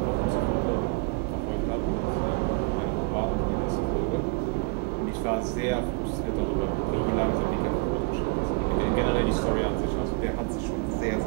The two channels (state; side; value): quieter; left; 28.5 dB